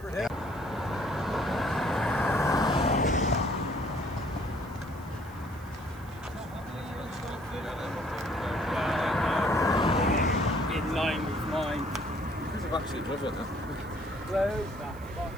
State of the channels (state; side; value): noise; right; hiss, 24 dB below the sound